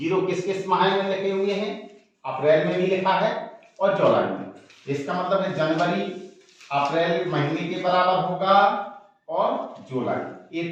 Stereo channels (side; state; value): both; identical; correlation 1.00